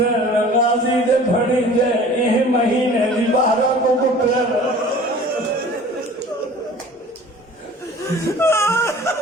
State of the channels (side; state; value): both; normal; correlation 0.45